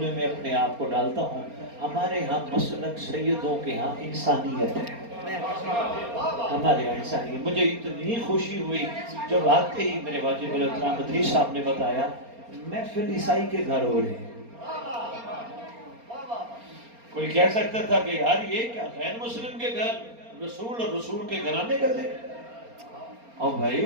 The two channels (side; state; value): left; late; 4.3 ms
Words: میں اپنے آپ کو ڈالتا ہوں. ہمارے ہاں مسلک سیدوں کے ہاں انسانیت ہے, ہمارے یہاں انسانیت. مجھے اتنی خوشی ہوئی جب آتے ہی میرے واجب الاحترام مدری صاحب نے بتایا محفل عیسائی کے گھر ہو رہے ہیں. کوئی کہہ سکتا تھا کہ یار یہ کیا غیر مسلم کے گھر, رسول اور رسول کے گھرانے کا ذکر. اور